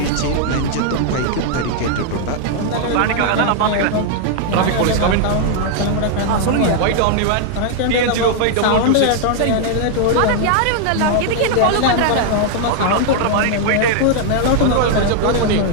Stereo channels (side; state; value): both; different; correlation 0.00